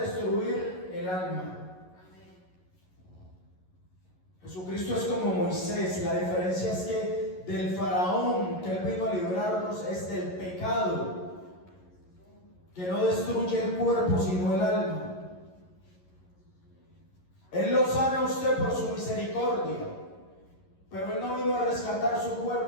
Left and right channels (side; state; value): right; late; 11 ms